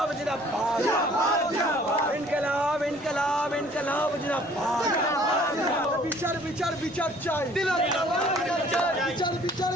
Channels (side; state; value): right; noise; rumble, 25 dB below the sound